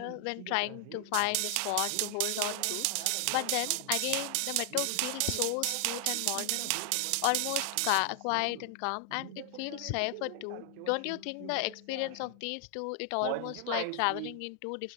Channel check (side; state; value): both; different; correlation 0.00